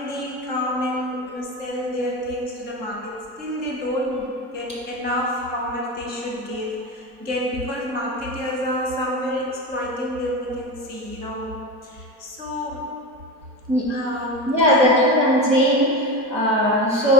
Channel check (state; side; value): late; left; 4.3 ms